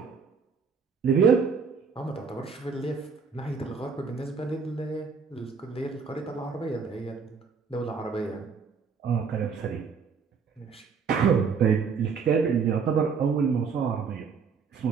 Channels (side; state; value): left; quieter; 5.7 dB